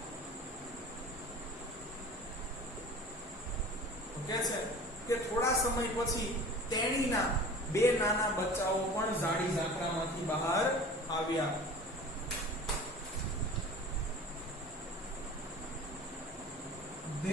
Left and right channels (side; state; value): both; normal; correlation 0.40